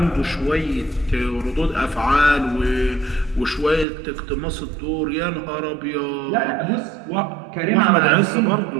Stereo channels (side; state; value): left; drops out; at 3.9 s